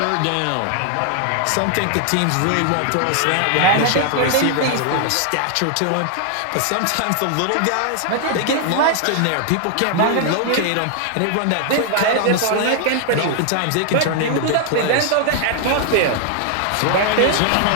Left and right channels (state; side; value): different; both; correlation 0.00